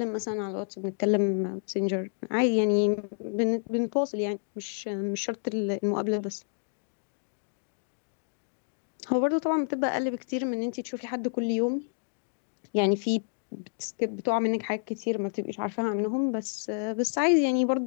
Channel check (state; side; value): silent; right; digital silence